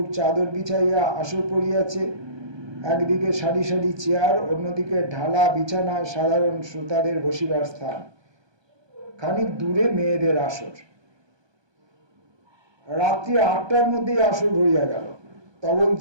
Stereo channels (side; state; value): left; late; 1.2 ms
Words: চাদর বিছাইয়া আসর পড়িয়াছে, একদিকে সারি সারি চেয়ার, অন্যদিকে ঢালা বিছানা, সাধারণ শ্রোতাদের বসিবার স্থান, খানিক দূরে মেয়েদের আসর। রাত্রি 8টার মধ্যেই আসর ভরিয়া গেল।